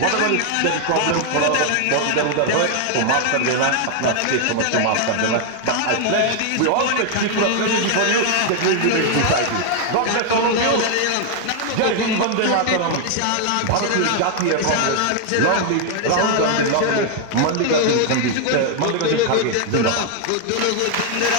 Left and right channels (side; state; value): both; different; correlation 0.00